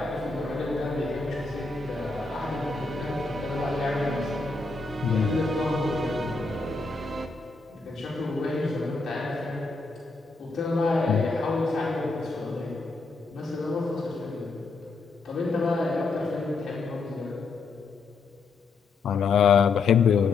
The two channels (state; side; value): quieter; right; 4.1 dB